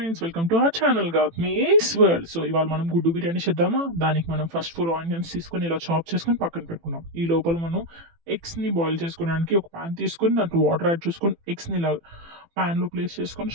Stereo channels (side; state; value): left; late; 18 ms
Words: welcome to our channel Gautami's world. So ఇవాళ మనం గుడ్డు బిర్యానీ చేద్దామా? దానికి మనం ఫస్ట్ 4 ఆనియన్స్ తీసుకొని ఇలా చాప్ చేసుకొని పక్కన పెట్టుకున్నాం. ఈ లోపల మనం ఎగ్స్ని బాయిల్ చేసుకోవడానికి ఒక ప్యాన్ తీసుకొని దాంట్లో వాటర్ యాడ్ చేసుకొని ఎగ్స్ని ఇలా ప్యాన్లో ప్లేస్ చేసుకొని